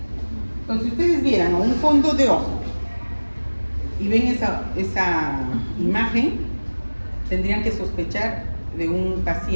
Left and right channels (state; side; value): inverted; both; correlation -1.00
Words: Entonces, si ustedes vieran un fondo de ojo y ven esa imagen, tendrían que sospechar de un